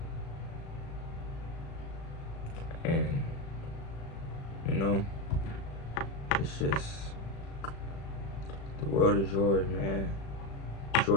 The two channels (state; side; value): late; right; 36 ms